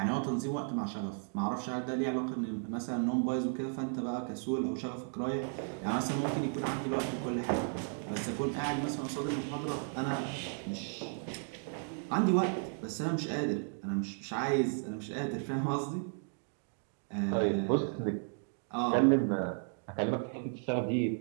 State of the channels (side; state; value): left; silent; 55 dB below the other